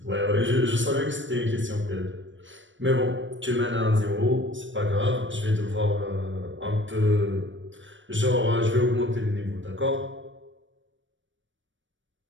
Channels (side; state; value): left; late; 0.55 ms